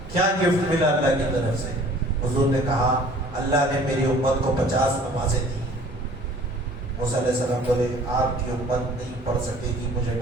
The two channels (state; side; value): normal; both; correlation 0.51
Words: کیا گفٹ ملا اللہ کی طرف سے؟ حضور نے کہا اللہ نے میری امت کو 50 نمازیں دی۔ موسیٰ علیہ السلام بولے آپ کی امت نہیں پڑھ سکے گی، مجھے